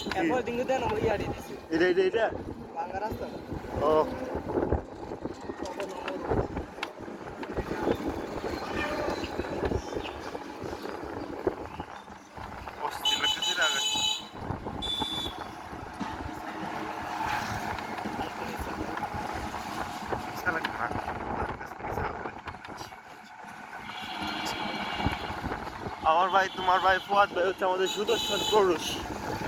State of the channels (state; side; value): identical; both; correlation 1.00